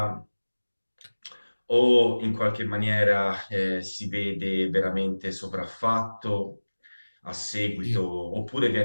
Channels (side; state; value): both; inverted; correlation -1.00